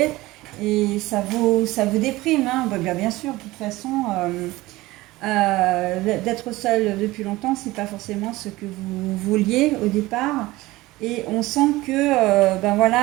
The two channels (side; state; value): left; quieter; 19.1 dB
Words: et ça vous déprime, hein. Bien sûr, de toute façon, d'être seul depuis longtemps, c'est pas forcément ce que vous vouliez au départ. Et on sent que,